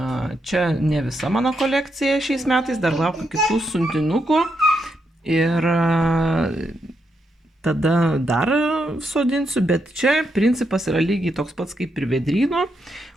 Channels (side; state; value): both; normal; correlation 0.81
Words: ne visa mano kolekcija šiais metais, dar laukiu kitų siuntinukų ir tada dar sodinsiu, bet čia principas yra lygiai toks pats kaip ir vėdryno.